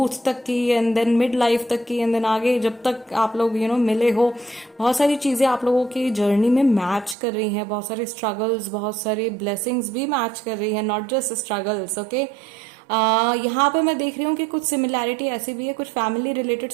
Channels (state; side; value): drops out; left; at 7.2 s